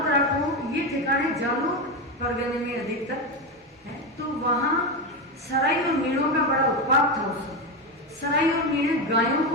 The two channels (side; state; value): both; normal; correlation 0.14